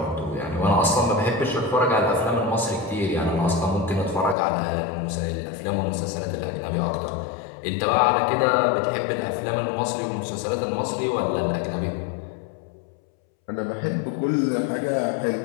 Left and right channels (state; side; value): drops out; right; at 4.4 s